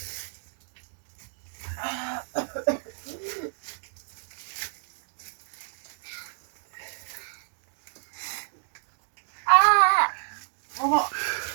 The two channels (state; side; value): silent; left; digital silence